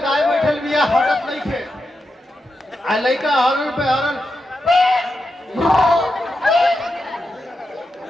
गाय बैठल बिया, हटत नहीं थे आ लड़का हॉर्न पे हॉर्न,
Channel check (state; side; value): normal; both; correlation 0.87